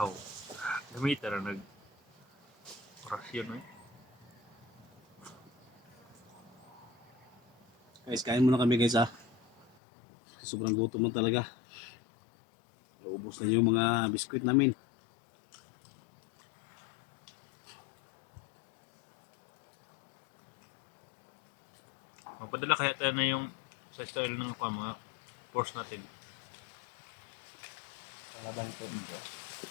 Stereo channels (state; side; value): drops out; right; at 9.7 s